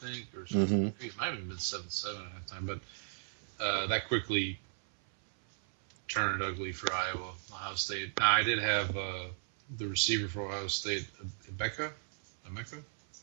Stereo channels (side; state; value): left; silent; 54 dB below the other